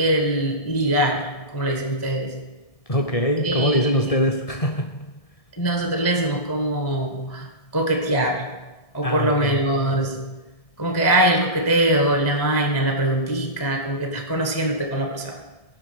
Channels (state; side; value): late; right; 1.6 ms